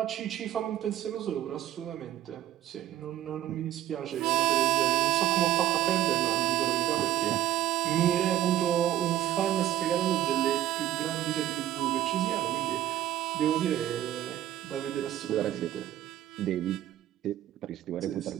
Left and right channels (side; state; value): left; quieter; 12.7 dB